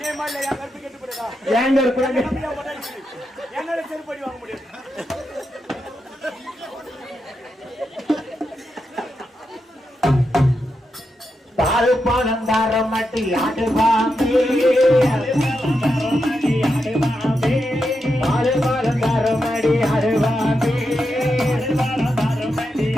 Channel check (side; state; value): both; normal; correlation 0.86